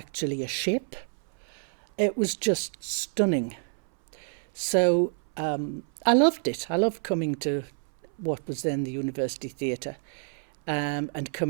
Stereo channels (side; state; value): left; silent; 59 dB below the other